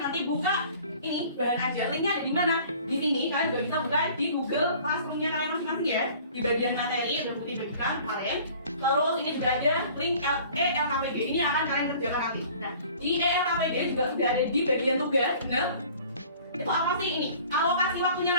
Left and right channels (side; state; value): both; inverted; correlation -0.49